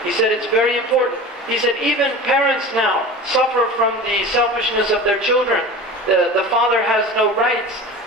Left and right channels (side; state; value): both; normal; correlation 0.34